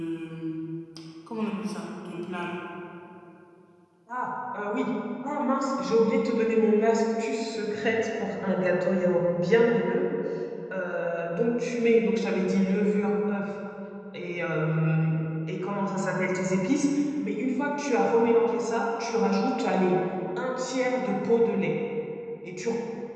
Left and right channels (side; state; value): both; identical; correlation 1.00